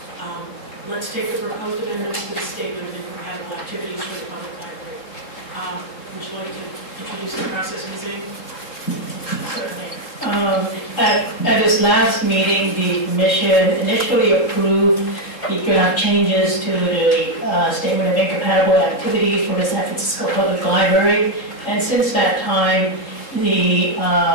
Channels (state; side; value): late; right; 3.7 ms